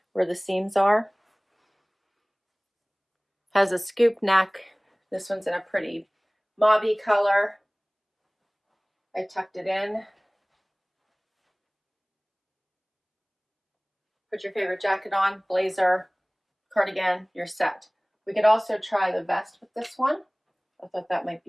where the seams are. Has a scoop neck. This one's in a pretty mauvey color. I tucked it in. Put your favorite jacket on, blazer, cardigan, you're set. We could also try the vest with this one. I thought that might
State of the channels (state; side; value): identical; both; correlation 1.00